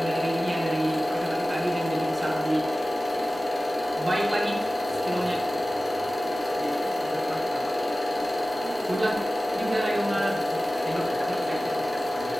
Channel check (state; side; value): normal; both; correlation 0.96